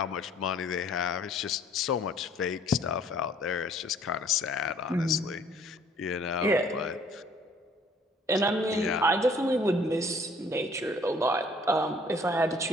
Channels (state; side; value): normal; both; correlation 0.58